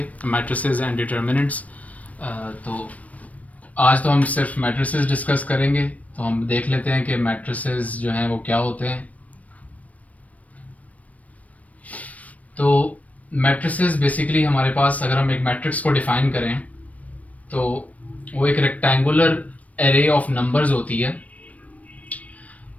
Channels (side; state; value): right; late; 0.069 ms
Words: मैट्रिसेस एंड डिटर्मिनेंट्स। तो आज तो हम सिर्फ मैट्रिसेस डिस्कस करेंगे। तो हम देख लेते हैं कि मैट्रिसेस जो हैं वो क्या होते हैं। तो मैट्रिसेस बेसिकली हमारे पास, अगर हम एक मैट्रिक्स को डिफ़ाइन करें तो वो एक रेक्टेंगुलर एरे ऑफ नंबर्स होती है।